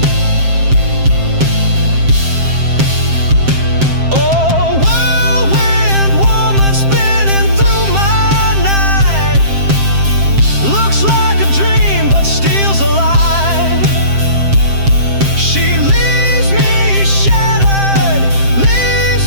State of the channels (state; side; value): late; left; 7.6 ms